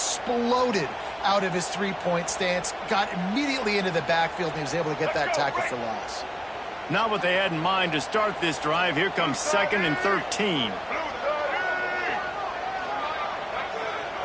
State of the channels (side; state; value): both; identical; correlation 1.00